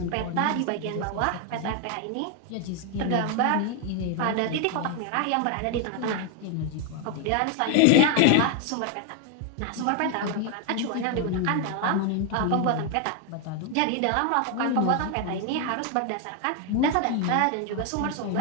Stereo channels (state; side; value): different; both; correlation 0.00